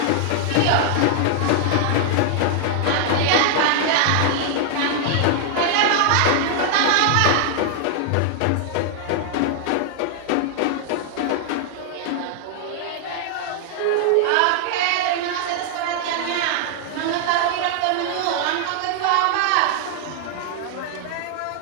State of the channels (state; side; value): different; both; correlation 0.00